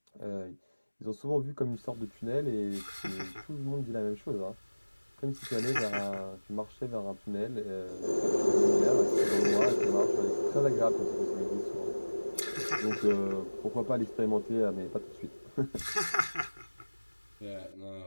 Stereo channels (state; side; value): inverted; both; correlation -1.00